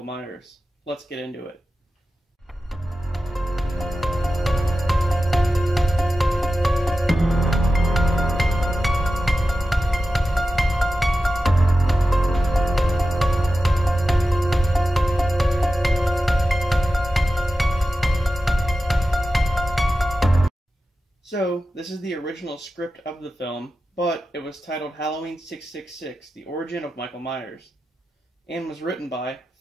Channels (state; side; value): normal; both; correlation 0.93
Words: Myers. Let's get into it. So, this is the original script of the film, but it was titled Halloween 666, The Origin of Michael Myers, and was written by